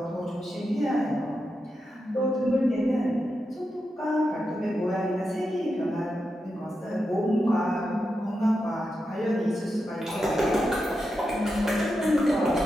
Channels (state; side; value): normal; both; correlation 0.88